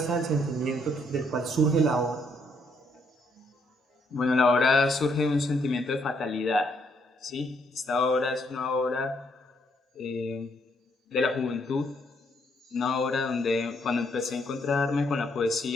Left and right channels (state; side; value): normal; both; correlation 0.72